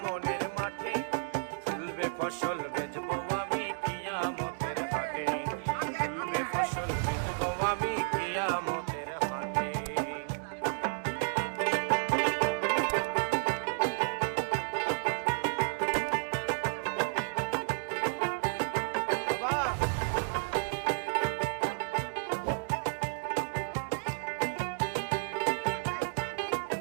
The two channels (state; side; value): silent; left; digital silence